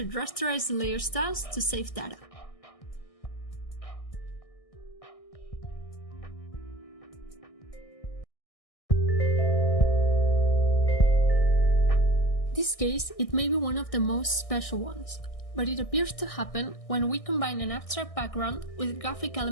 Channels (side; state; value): right; late; 1.6 ms